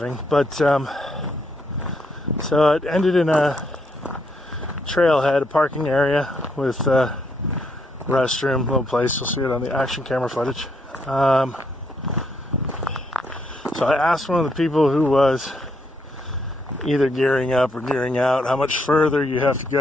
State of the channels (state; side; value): normal; both; correlation 0.75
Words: But so it ended in a trailhead, a parking area with a restroom, little place. You'll see it on the action camera footage. So I asked one of the people who was either gearing up or gearing out how much further you have to